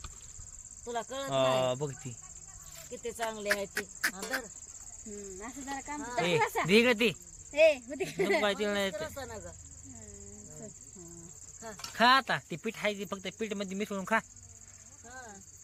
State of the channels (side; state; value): both; identical; correlation 1.00